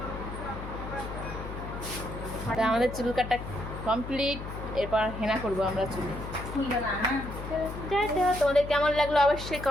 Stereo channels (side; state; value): left; noise; hum, 9 dB below the sound